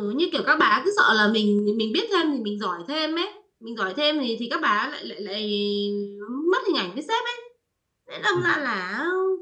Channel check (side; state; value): both; identical; correlation 1.00